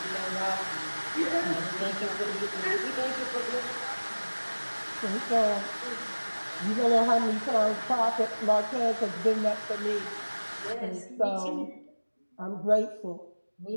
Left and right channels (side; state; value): both; inverted; correlation -1.00